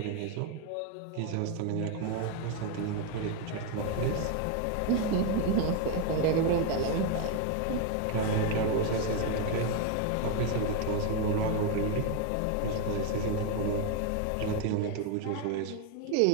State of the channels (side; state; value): both; different; correlation 0.01